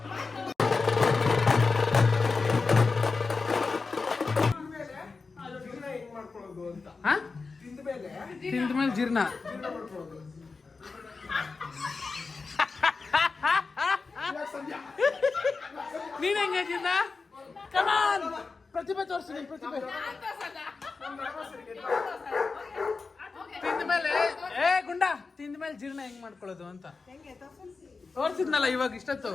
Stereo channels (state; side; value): quieter; right; 4.3 dB